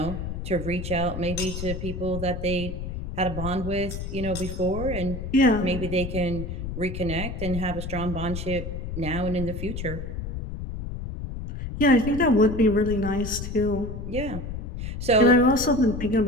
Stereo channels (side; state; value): left; noise; rumble, 6 dB below the sound